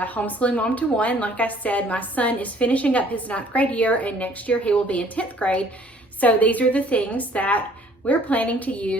homeschooling mom to one. Like I said, my son is finishing up his 9th grade year and next year he will be in 10th grade. So these are the things that we're planning to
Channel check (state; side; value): normal; both; correlation 0.57